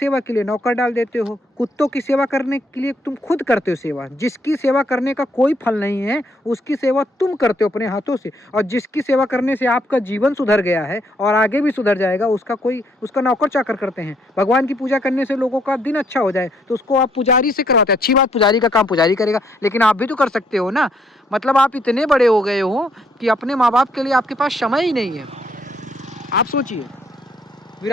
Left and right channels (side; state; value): both; normal; correlation 0.70